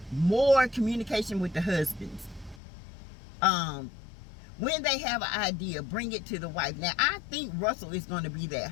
more communication with the husbands. When they have an idea, bring it to the wife. Now, I think Russell is going to be that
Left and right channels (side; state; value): right; drops out; at 2.6 s